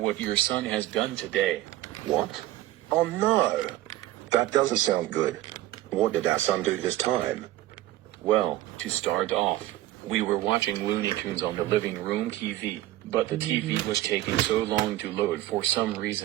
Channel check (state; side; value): quieter; left; 15.5 dB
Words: your son has done today. What? Oh no! That doesn't sound good. What did our son do this time? Well, to start off, we were watching Looney Tunes on the living room TV, but the TV was taking so long to load for some